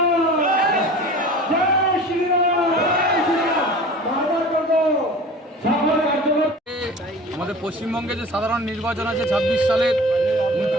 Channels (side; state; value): both; normal; correlation 0.39